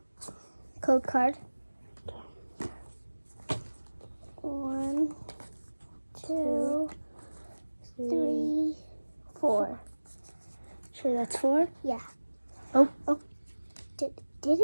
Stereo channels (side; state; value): both; inverted; correlation -1.00